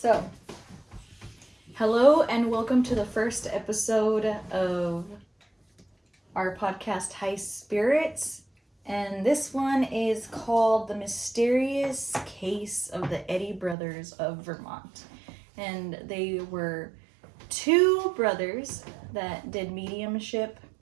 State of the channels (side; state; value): left; drops out; at 13.8 s